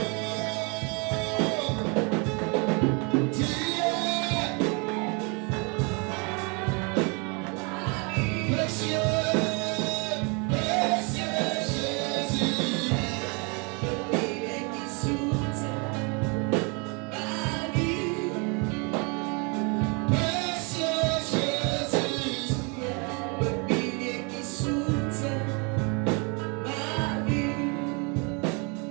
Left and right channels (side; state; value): left; quieter; 32.5 dB